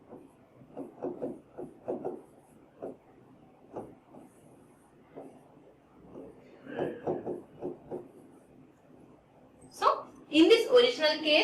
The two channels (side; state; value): both; identical; correlation 1.00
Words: in this original